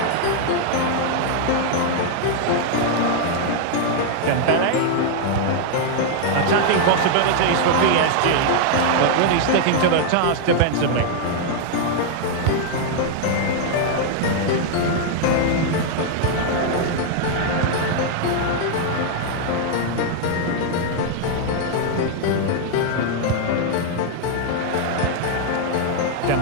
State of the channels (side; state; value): both; different; correlation 0.00